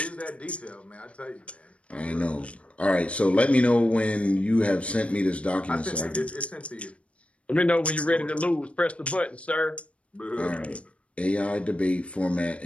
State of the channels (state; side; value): late; right; 0.062 ms